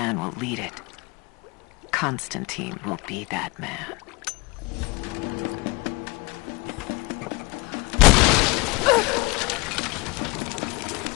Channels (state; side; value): quieter; right; 25.3 dB